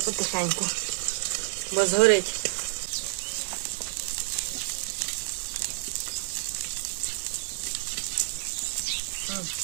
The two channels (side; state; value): left; silent; 59 dB below the other